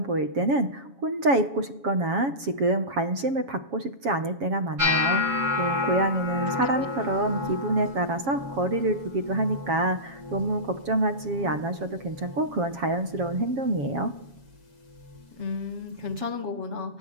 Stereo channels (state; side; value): late; left; 7.3 ms